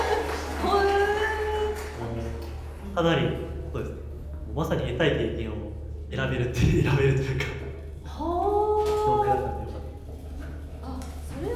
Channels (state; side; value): identical; both; correlation 1.00